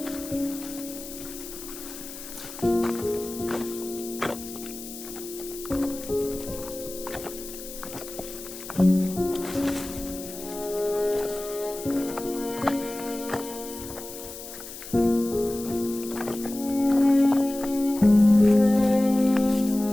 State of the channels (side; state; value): left; noise; hiss, 12 dB below the sound